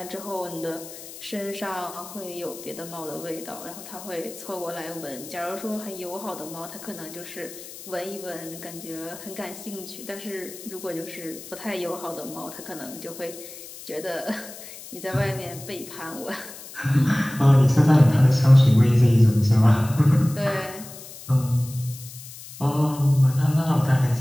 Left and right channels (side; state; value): left; noise; hiss, 15 dB below the sound